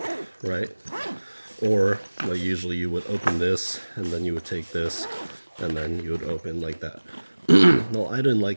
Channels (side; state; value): both; inverted; correlation -1.00